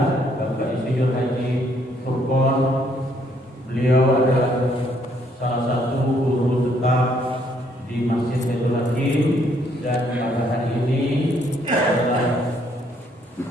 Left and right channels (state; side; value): normal; both; correlation 0.68